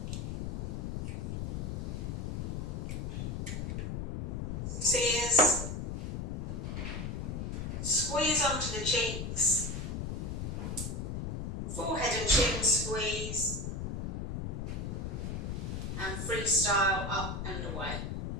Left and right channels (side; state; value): left; noise; rumble, 3 dB below the sound